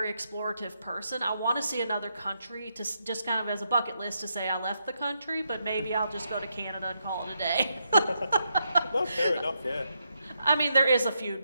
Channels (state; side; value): inverted; both; correlation -0.81